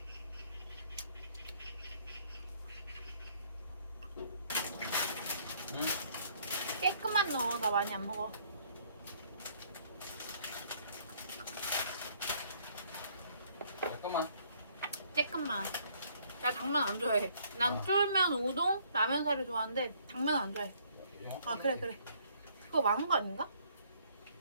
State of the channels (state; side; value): inverted; both; correlation -0.64